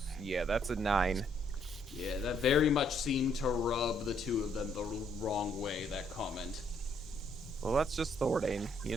Yeah, that's a 9. Yeah, that very much seemed to rub the 2 of them the wrong way, that comment. Well, that's just Thordane, you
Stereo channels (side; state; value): both; normal; correlation 0.70